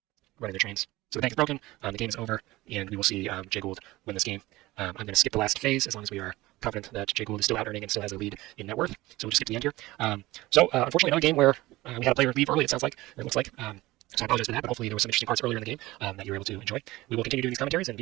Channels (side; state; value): left; quieter; 18.9 dB